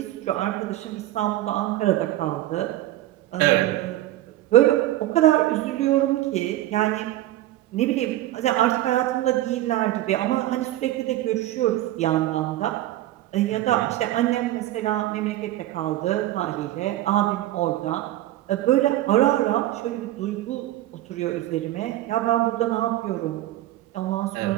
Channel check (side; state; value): left; quieter; 15.1 dB